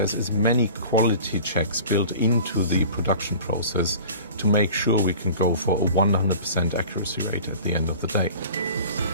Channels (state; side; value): inverted; both; correlation -0.41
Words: as many quality checks built into the production process to make sure we can go for a 100% accuracy rate at the end of the day.